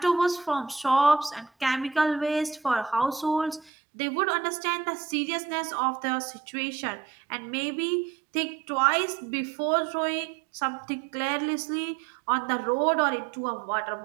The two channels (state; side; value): drops out; left; at 3.7 s